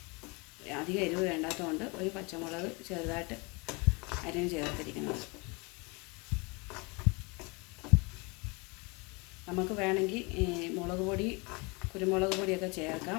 അധികം എരിവ് വേണ്ടാത്തതുകൊണ്ട് ഒരു പച്ചമുളക് ചെറുതായിട്ട് അരിഞ്ഞ് ചേർത്തിരിക്കുന്നത്. നമുക്ക് വേണമെങ്കിൽ മുളക് പൊടി കുരുമുളക് പൊടിയൊക്കെ ചേർക്കാം.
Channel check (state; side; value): quieter; right; 28.6 dB